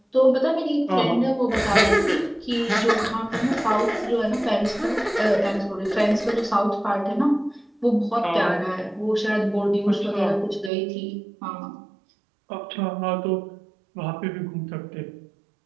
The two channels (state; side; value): drops out; left; at 10.7 s